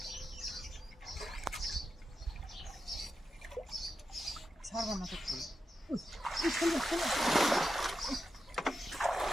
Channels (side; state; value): both; normal; correlation 0.89